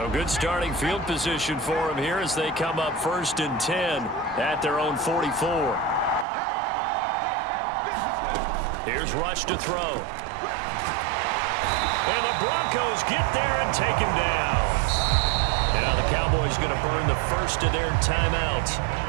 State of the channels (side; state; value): left; drops out; at 6.2 s